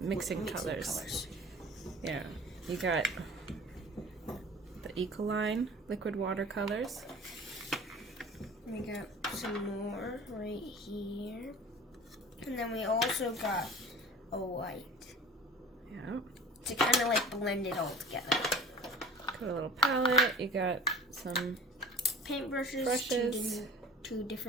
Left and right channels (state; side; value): normal; both; correlation 0.41